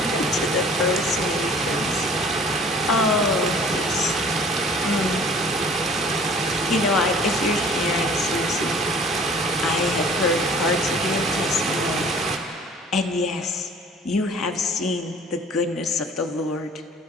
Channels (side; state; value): both; normal; correlation 0.49